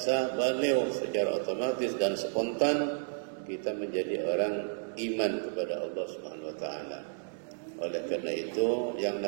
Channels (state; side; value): silent; left; digital silence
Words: beliau secara otomatis dan spontan kita menjadi orang iman kepada Allah Subhanahu wa taala. Oleh karena itu, yang